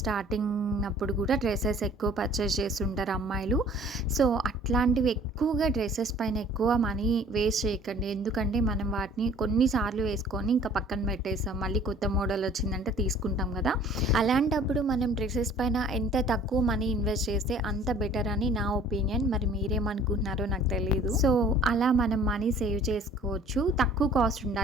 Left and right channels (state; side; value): normal; both; correlation 0.52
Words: అప్పుడు కూడా డ్రెస్సెస్ ఎక్కువ పర్చేస్ చేస్తుంటారు అమ్మాయిలు. సో అట్లాంటివి ఎక్కువగా డ్రెస్సెస్ పైన ఎక్కువ మనీ వేస్ట్ చేయకండి, ఎందుకంటే మనం వాటిని కొన్నిసార్లు వేసుకొని ఇంకా పక్కన పెట్టేస్తాం, మళ్ళీ కొత్త మోడల్ వచ్చిందంటే తీసుకుంటాం కదా. అలాంటప్పుడు మనం డ్రెస్సెస్ పైన ఎంత తక్కువ మనీ ఇన్వెస్ట్ చేస్తే అంత బెటర్ అని నా ఒపీనియన్. మరి మీరేమనుకుంటున్నారో నాకు తెలియదు. సో అలా మనం మనీ సేవ్ చేసుకోవచ్చు. తక్కువ కాస్ట్